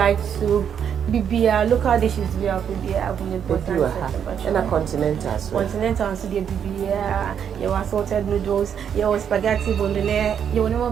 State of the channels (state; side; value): quieter; left; 8.2 dB